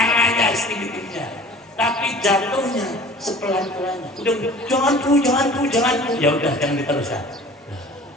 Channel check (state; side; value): normal; both; correlation 0.45